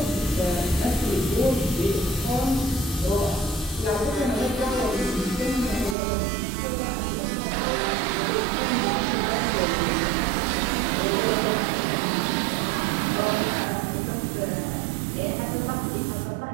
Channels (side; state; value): left; drops out; at 6.0 s